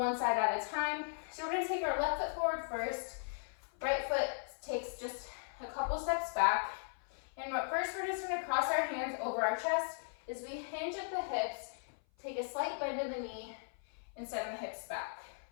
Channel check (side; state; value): right; silent; 53 dB below the other